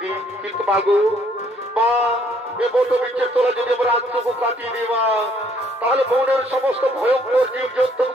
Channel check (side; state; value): both; normal; correlation 0.65